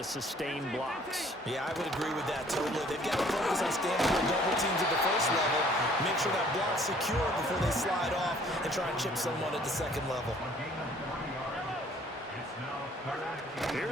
sustain blocks. Yeah, I would agree with that totally. They've got to focus on standing on double teams at the first level, make sure that block's secure before they slide off and try and chip someone at the second level.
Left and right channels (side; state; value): both; normal; correlation 0.57